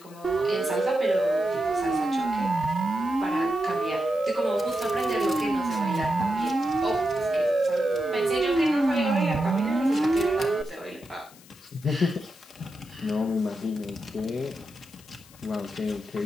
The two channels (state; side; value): noise; left; hiss, 23 dB below the sound